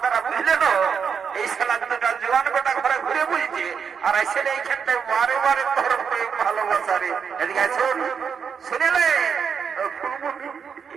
বুঝলে তো? এই শালা দুটা জোয়ান গোটা ঘরে ঘুরে বুঝছে আর এসে এইখানটায় বারে বারে তোর প্রেম ভালোবাসা রে। এদিকে আছো শুনেলে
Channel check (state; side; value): quieter; left; 6.6 dB